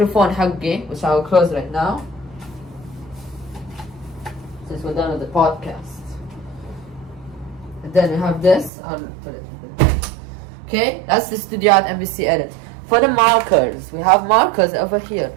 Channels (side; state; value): left; drops out; at 8.7 s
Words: حقي, which I will close right now. Since we're done with the podcast. And then we have this. I'll put it. Okay, that's the studio at NBC Edit. For the markers, we have markers over here.